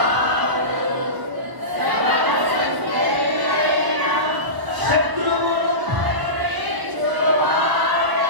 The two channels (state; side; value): late; left; 1.0 ms